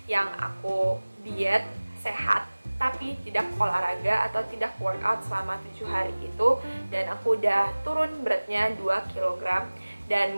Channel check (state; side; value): inverted; both; correlation -1.00